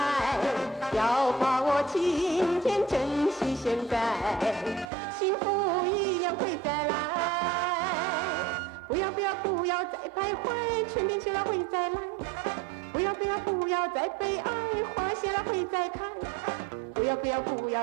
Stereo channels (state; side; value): drops out; left; at 4.9 s